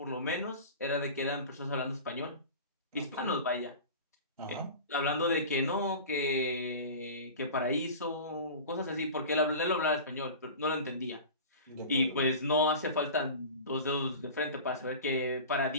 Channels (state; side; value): inverted; both; correlation -0.34